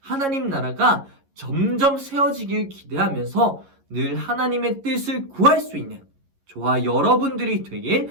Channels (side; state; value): left; late; 11 ms